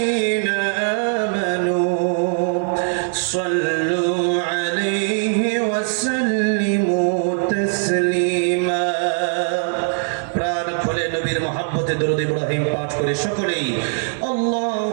آمنوا صلوا عليه وسلموا تسليما. প্রাণ খুলে নবীর মহব্বতে দরুদ ইব্রাহিম পাঠ করে সকলেই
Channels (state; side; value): silent; left; 65 dB below the other